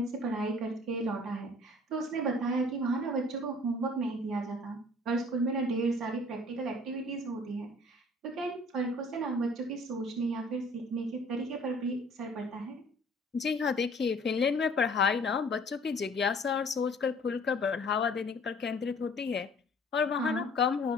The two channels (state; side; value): normal; both; correlation 0.52